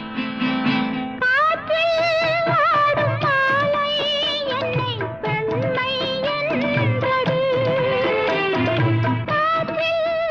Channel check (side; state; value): left; noise; rumble, 26 dB below the sound